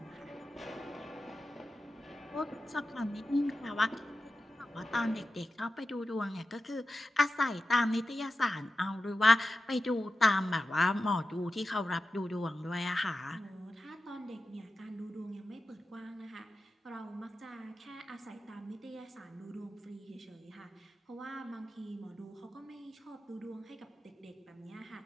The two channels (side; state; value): both; normal; correlation 0.92